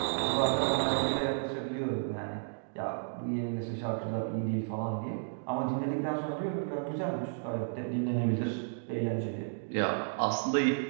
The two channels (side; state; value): left; silent; digital silence